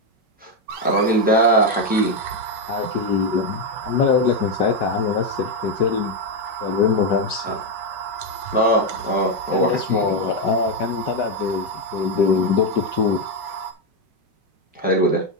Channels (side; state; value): left; late; 5.4 ms